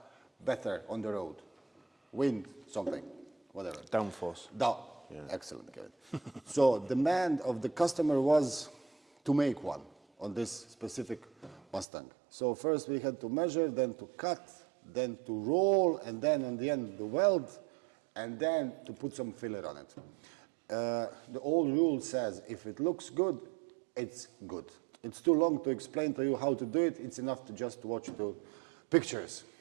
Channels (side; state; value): left; drops out; at 11.9 s